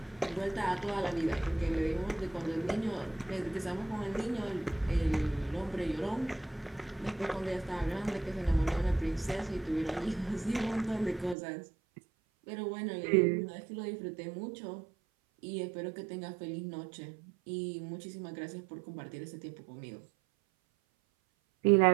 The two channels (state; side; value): drops out; left; at 11.4 s